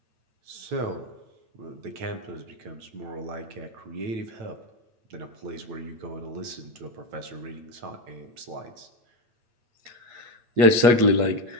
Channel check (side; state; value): left; late; 8.4 ms